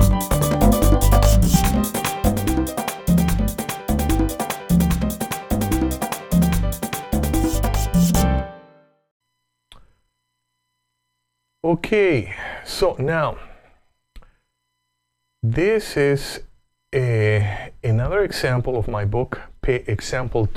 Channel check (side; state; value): both; identical; correlation 1.00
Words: Okay, so now this is another example of my book, example